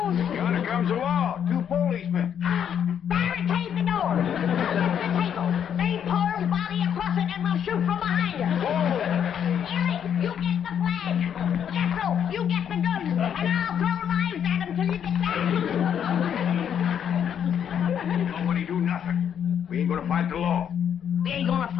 Yonder comes the law. 2 policemen. Barricade the door. Get the table. Lay Pearl's body across it and we'll shoot from behind her. Ellie, you get the flag. Jethro, you get the guns. And I'll throw knives at him till you get back. Nobody do nothing. We ain't gonna fight the law. We ain't gonna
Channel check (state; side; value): quieter; right; 8.7 dB